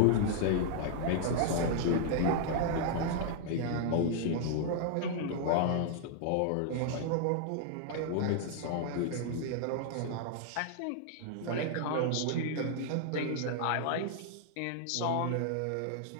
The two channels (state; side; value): different; both; correlation -0.01